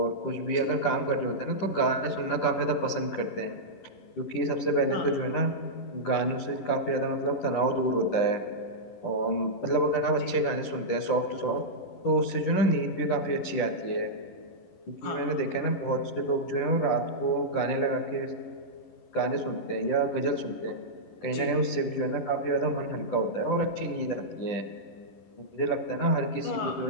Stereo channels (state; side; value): late; right; 11 ms